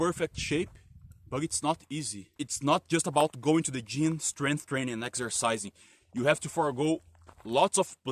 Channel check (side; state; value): both; identical; correlation 1.00